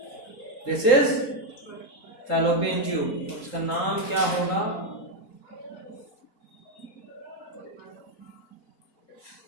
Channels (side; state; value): right; late; 3.8 ms